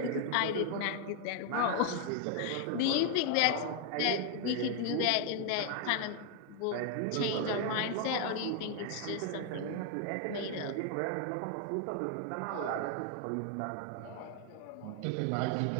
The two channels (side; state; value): both; different; correlation 0.00